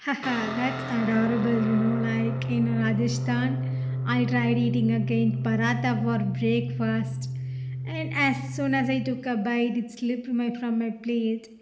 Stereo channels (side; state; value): both; identical; correlation 1.00